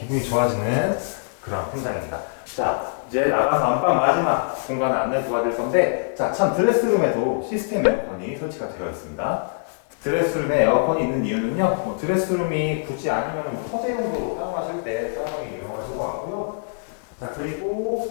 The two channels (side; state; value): right; silent; digital silence